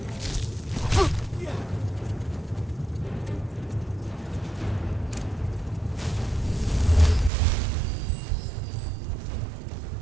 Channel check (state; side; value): drops out; left; at 7.3 s